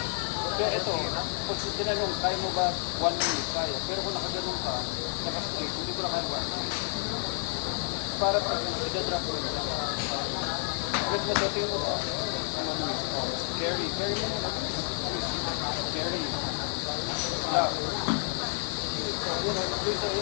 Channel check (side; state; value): right; silent; 58 dB below the other